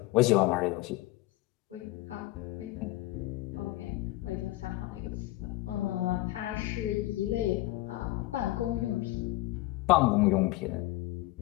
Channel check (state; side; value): quieter; right; 18.3 dB